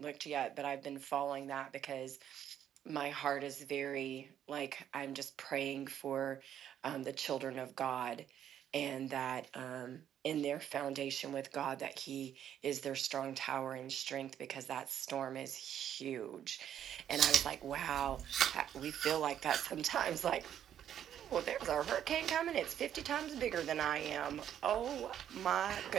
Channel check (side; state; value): left; quieter; 10.1 dB